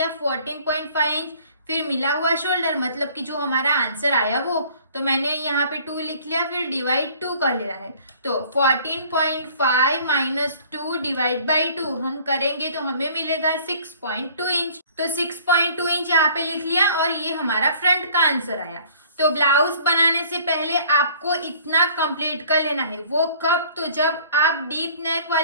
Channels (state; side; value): inverted; both; correlation -0.53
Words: 14.5 इंच। फिर मिला हुआ शोल्डर मतलब कि जो हमारा आंसर आया वो, तो मैंने यहाँ पे 2 लिख लिया, फिर डिवाइड 2 कर लेना है। तो 14.5 - 2 डिवाइड बाई 2 हम करेंगे तो हमें मिलेगा 6.2 इंच। तो 6.2 इंच यहाँ पे लिख लिया और ये हमारा फ्रंट का आंसर आया। तो ब्लाउज बनाने से पहले आपको इतना कंप्लीट कर लेना है। वो कब, तो जब आप डीप नेक